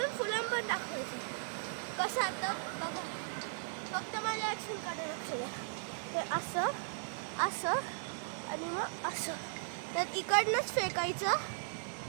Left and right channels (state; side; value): silent; left; digital silence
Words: फुल आर्म पण टाकायचं. कसं आता बघा, फक्त माझ्या ॲक्शनकडे लक्ष द्या. ते असं आणि मग असं तर इकडनंच फेकायचं